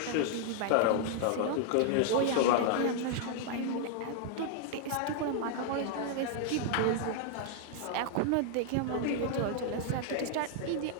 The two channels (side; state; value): both; different; correlation -0.01